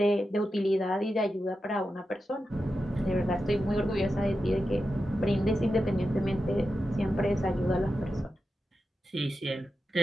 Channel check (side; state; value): both; normal; correlation 0.90